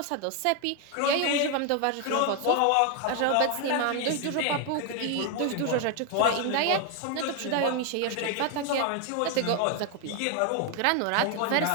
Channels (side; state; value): both; different; correlation 0.01